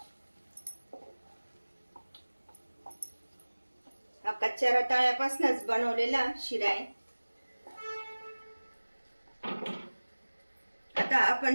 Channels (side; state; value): both; inverted; correlation -1.00